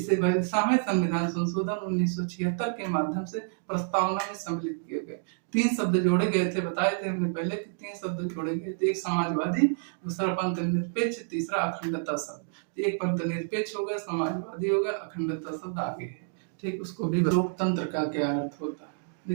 बयालीसवें संविधान संशोधन 1976 के माध्यम से प्रस्तावना में सम्मिलित किए गए। 3 शब्द जोड़े गए थे, बताए थे हमने पहले कि 3 शब्द जोड़े गए थे, एक समाजवादी, दूसरा पंथ निरपेक्ष, तीसरा अखंडता शब्द। एक पंथ निरपेक्ष हो गया, समाजवादी हो गया, अखंडता शब्द आगे है, ठीक। उसको भी लोकतंत्र का क्या अर्थ होता है।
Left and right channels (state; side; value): silent; left; digital silence